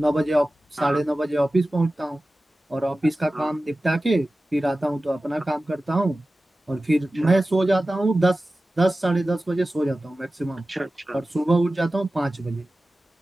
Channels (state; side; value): normal; both; correlation 0.96